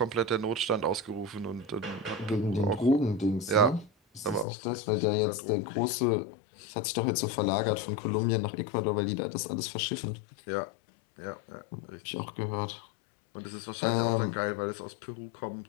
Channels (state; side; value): drops out; right; at 4.5 s